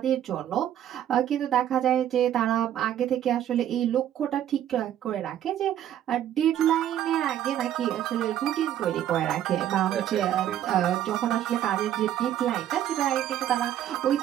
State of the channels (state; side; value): quieter; left; 11.2 dB